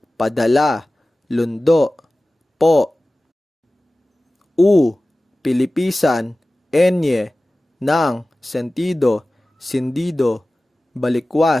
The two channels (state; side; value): normal; both; correlation 0.97